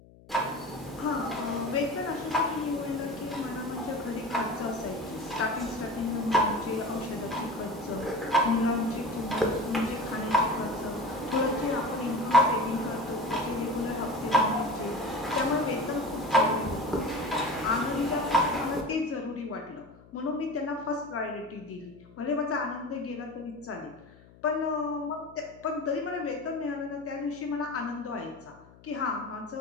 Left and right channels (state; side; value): noise; left; hum, 24 dB below the sound